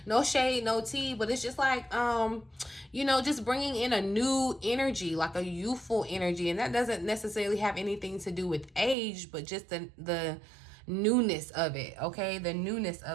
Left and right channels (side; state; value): left; drops out; at 9.0 s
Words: no shade, no tea, but it's just like, you know, just bringing in a new energy, like a youthful energy. And that doesn't necessarily have anything to do with age, but just the newness of it, okay? The newness